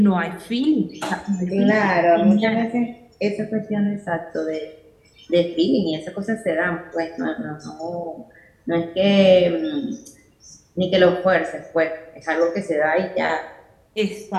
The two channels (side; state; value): both; identical; correlation 1.00